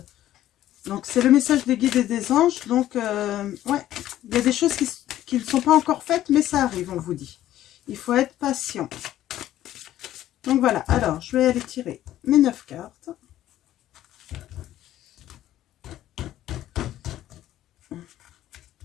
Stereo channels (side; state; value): right; quieter; 13.1 dB